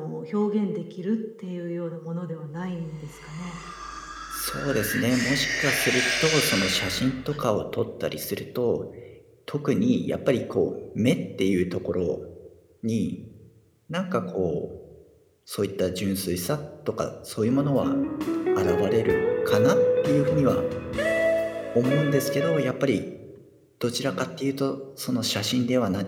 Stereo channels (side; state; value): both; identical; correlation 1.00